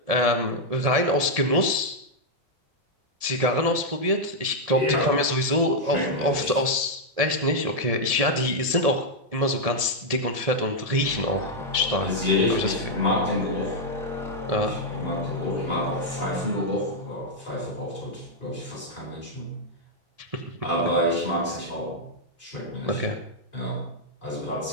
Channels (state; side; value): late; left; 1.7 ms